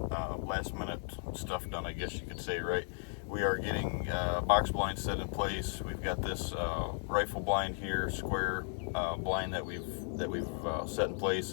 last minute stuff done, I guess you could say, right? We are getting box blinds set in place. We've got this rifle blind here, square blind that we've set in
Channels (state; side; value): silent; right; 54 dB below the other